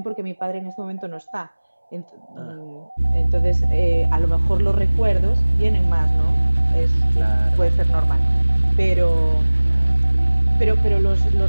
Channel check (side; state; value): both; inverted; correlation -1.00